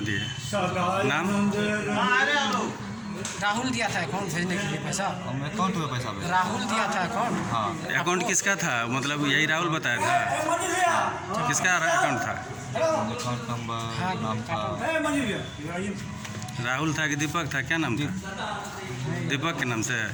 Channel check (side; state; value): both; identical; correlation 1.00